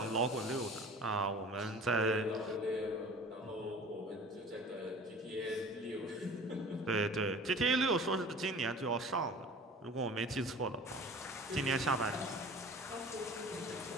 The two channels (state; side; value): normal; both; correlation 0.43